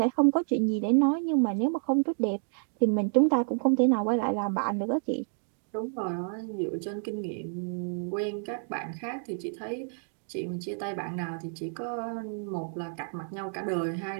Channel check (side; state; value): left; silent; digital silence